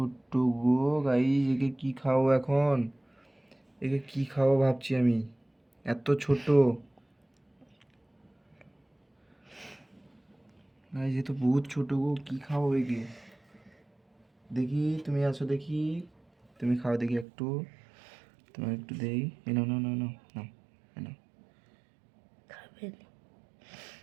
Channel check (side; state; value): left; drops out; at 17.2 s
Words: গো গাইস, একে কি খাওয়াবো এখন? একে কি খাওয়াবো ভাবছি আমি, এত ছোট গাইস, এ তো বহুত ছোট গো, কি খাওয়াবো একে? দেখি তুমি আসো, দেখি তুমি খাও দেখি একটু, তোমার একটু দেই। এ নাও নাও নাও নাও নাও, এ নাও। খাবে না।